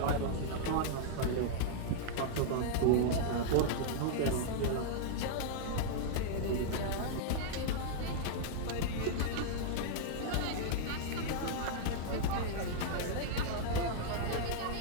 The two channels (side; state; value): both; different; correlation -0.01